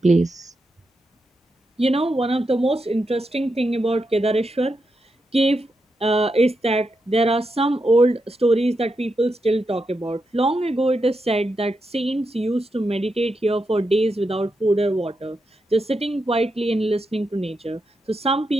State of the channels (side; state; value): both; normal; correlation 0.86